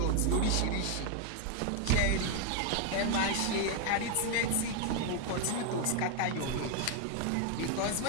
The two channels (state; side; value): different; both; correlation 0.01